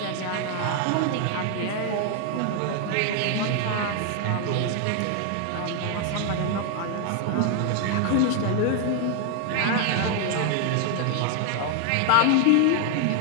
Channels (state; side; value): different; both; correlation 0.00